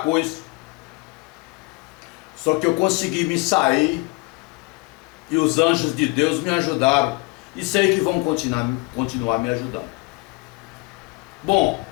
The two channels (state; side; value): quieter; right; 27.0 dB